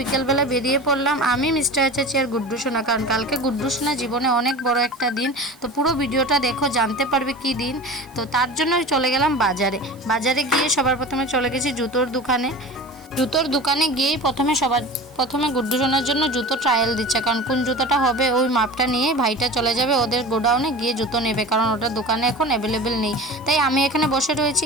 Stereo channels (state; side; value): noise; right; hiss, 28 dB below the sound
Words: বিকেলবেলা বেরিয়ে পড়লাম আমি, মিস্টার আচাচি আর গুড্ডু সোনা, কারণ কালকে গুড্ডু সোনা জীবনে অনেক বড় একটা দিন। তো পুরো ভিডিওটা দেখো, জানতে পারবে কী দিন। তো তার জন্য চলে গেলাম বাজারে গিয়ে সবার প্রথমে চলে গেছি জুতোর দোকানে গিয়েই প্রথমে গুড্ডু সোনার জন্য জুতো ট্রায়াল দিচ্ছে, কারণ কোন জুতোটা হবে ওই মাপটা নিয়ে ভাইটা চলে যাবে ওদের গোডাউনে গিয়ে জুতো নেবে, কারণ ওটার দোকানে এখন অ্যাভেলেবেল নেই। তাই আমি এখানে বসে